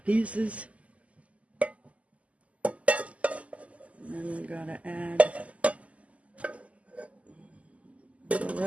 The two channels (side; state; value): left; late; 0.068 ms